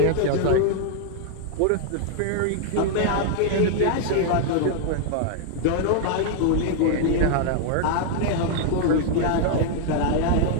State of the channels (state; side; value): different; both; correlation -0.01